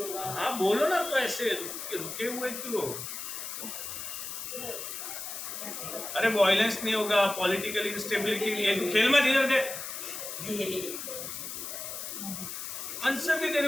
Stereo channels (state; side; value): noise; left; hiss, 7 dB below the sound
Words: होगा। हाँ बोलो ना, तो ऐसे रुके हुए क्यों? अरे वायलेंस नहीं होगा, पॉलिटिकल इंस्टेबिलिटी नहीं है, खेल मत इधर दे। आंसर भी तेरे